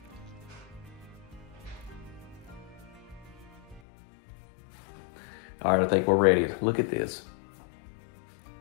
All right, I think we're ready. Look at this.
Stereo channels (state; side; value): drops out; right; at 3.8 s